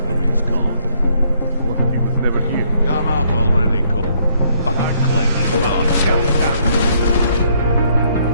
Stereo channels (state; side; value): inverted; both; correlation -0.69